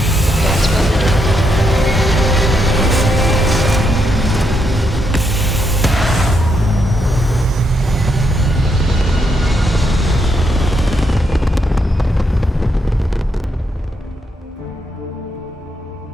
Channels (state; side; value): normal; both; correlation 0.79